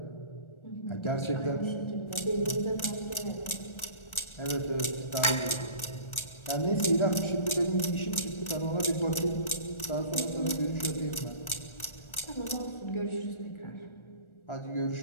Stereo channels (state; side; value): late; right; 1.4 ms